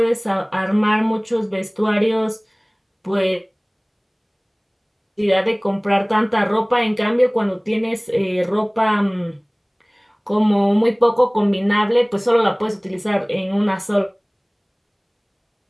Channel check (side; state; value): both; identical; correlation 1.00